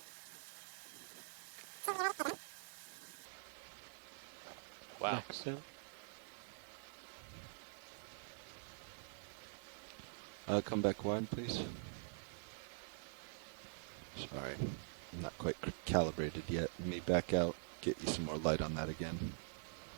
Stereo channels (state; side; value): silent; left; digital silence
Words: Wow. Excellent. Come back wide, please. Sorry, I'm not quite calibrated yet. Let me back out, get you some more light on that again.